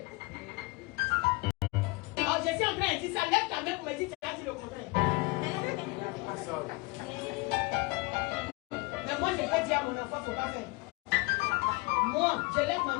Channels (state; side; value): quieter; right; 25.1 dB